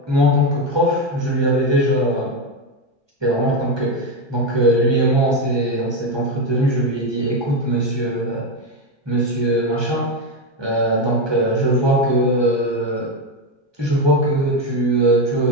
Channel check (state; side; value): late; left; 1.2 ms